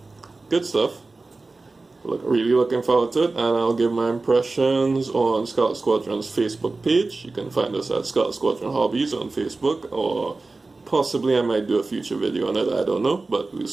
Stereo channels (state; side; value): quieter; left; 3.5 dB